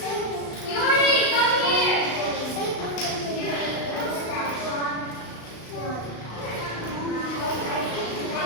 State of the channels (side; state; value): right; late; 35 ms